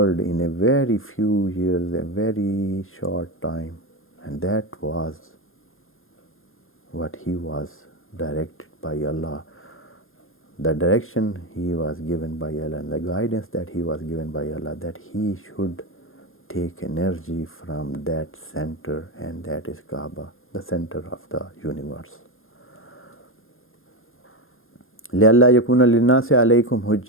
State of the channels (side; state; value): right; late; 0.60 ms